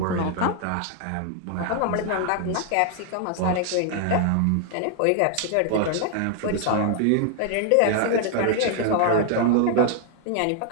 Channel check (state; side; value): different; both; correlation 0.00